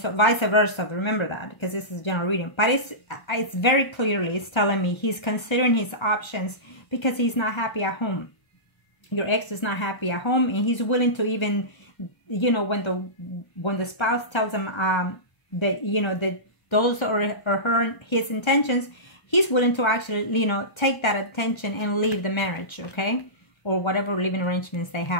so vice versa. Remember that, because this is general reading. But it's very clearly, it's telling me he's considering his options because he's not happy at home. Your ex is not happy at home, and he's willing to even, you know, when the spouse tells him that, you know, that those are his intentions, he's willing to actually, you know, take that attention and leave the marriage, okay? Or whatever living arrangements they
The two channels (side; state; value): right; late; 1.3 ms